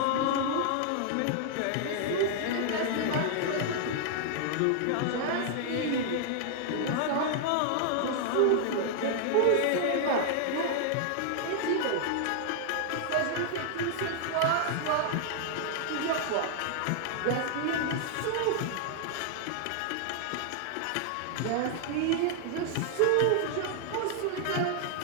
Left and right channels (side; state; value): both; different; correlation 0.00